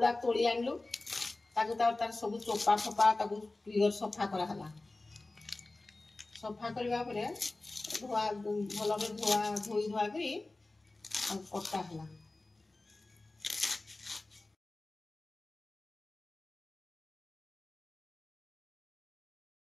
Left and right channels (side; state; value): right; quieter; 3.0 dB